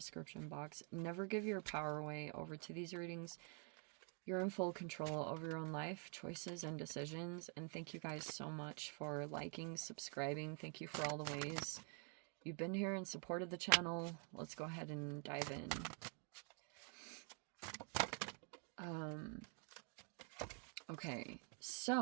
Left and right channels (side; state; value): left; quieter; 39.6 dB